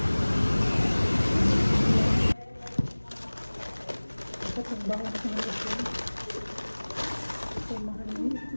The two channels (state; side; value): inverted; both; correlation -1.00